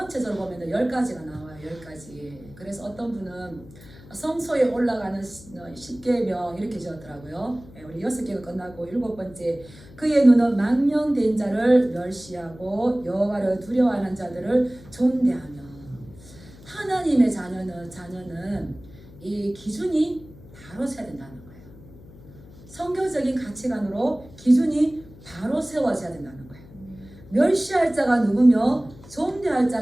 보면 10가지가 나와요. 10가지. 그래서 어떤 분은 성소에 올라가는 10계명 이렇게 지었더라고요. 우리 6개가 끝나고 7번째 그의 눈은 망령된 자를 멸시하고 여호와를 두려워하는 자들을 존대하며. 하나님의 자녀는 이 기준이 바로 세야 된다는 거예요. 성경적인 가치관으로 기준이 바로 세워져야 된다는 거예요. 멸시할 자가 누구며 존대할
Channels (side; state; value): left; noise; hum, 20 dB below the sound